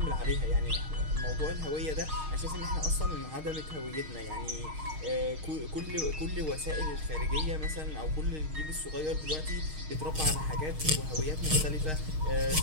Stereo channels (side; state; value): left; late; 6.4 ms